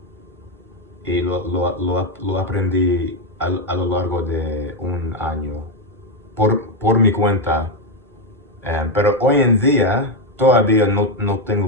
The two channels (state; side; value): normal; both; correlation 0.06